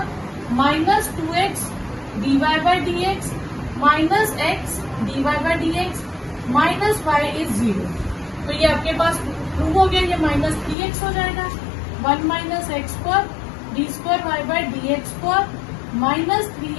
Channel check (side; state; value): right; drops out; at 10.8 s